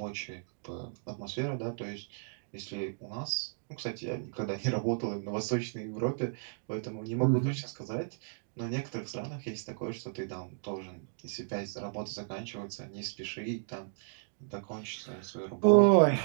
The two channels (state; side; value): silent; left; digital silence